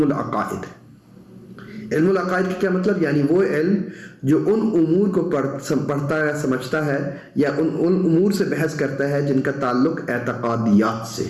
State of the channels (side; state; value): both; identical; correlation 1.00